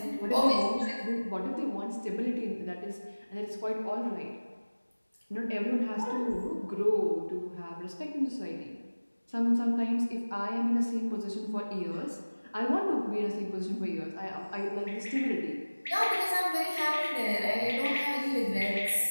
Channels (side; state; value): both; inverted; correlation -1.00